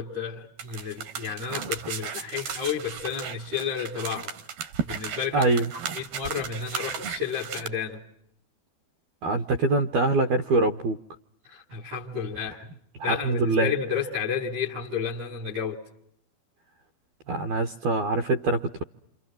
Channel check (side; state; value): left; late; 13 ms